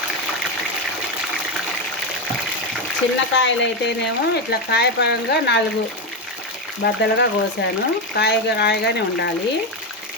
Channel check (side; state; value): both; normal; correlation 0.11